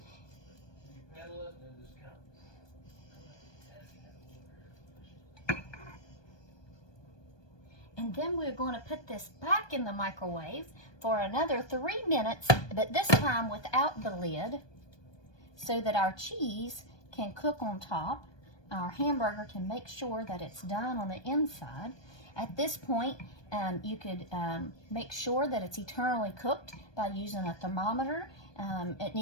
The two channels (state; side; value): late; right; 1.2 ms